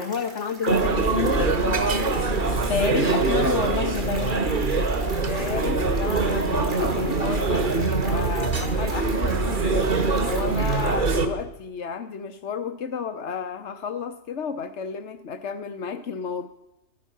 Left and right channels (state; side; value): late; right; 2.4 ms